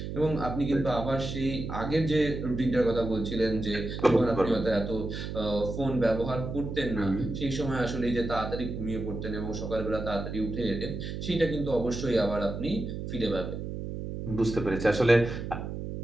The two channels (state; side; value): noise; right; hum, 6 dB below the sound